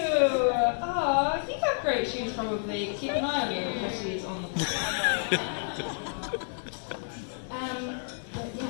Oh, I think I have great shoes probably. Keep an eye on your shoes on the But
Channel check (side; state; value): right; silent; 58 dB below the other